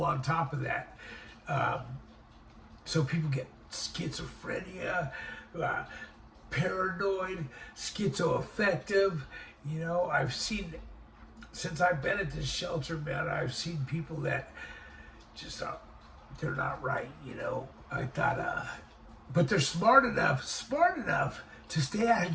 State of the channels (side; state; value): both; identical; correlation 1.00